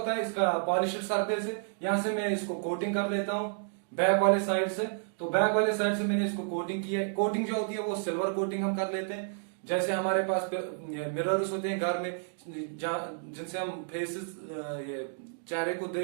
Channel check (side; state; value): left; silent; digital silence